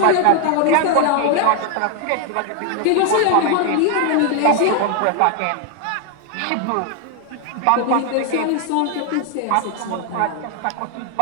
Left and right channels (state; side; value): different; both; correlation 0.00